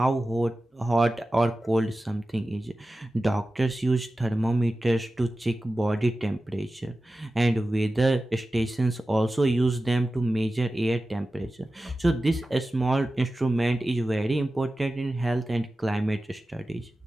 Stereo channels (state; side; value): normal; both; correlation 0.94